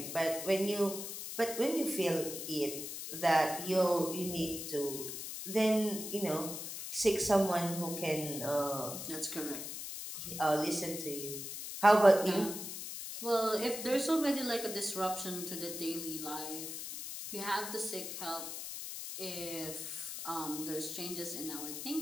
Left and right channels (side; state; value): left; noise; hiss, 7 dB below the sound